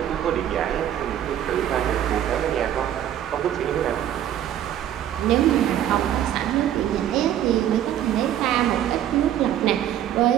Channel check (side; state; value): left; quieter; 11.1 dB